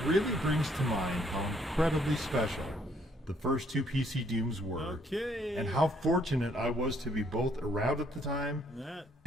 really brings to mind how incredibly special the first two PC Dooms were, and how fortunate I was to be both around at the time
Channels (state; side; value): normal; both; correlation 0.67